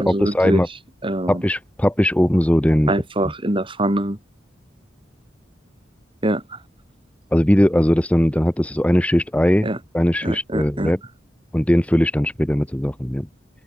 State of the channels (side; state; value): both; normal; correlation 0.92